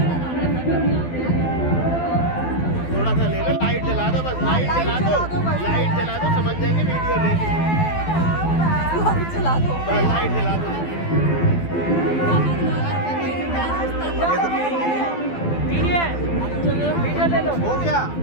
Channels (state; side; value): late; right; 12 ms